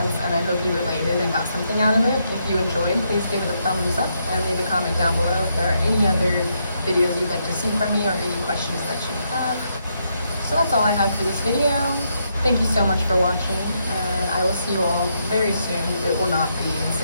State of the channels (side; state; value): both; inverted; correlation -0.78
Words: and I hope you related and got something out of it. If you enjoyed, please give it a thumbs up and leave a comment down below if there are any other videos you'd like to see from me or any questions that you have. So that's all I have for this video. Thank you so much for watching, and I will see you all very soon. It will not be in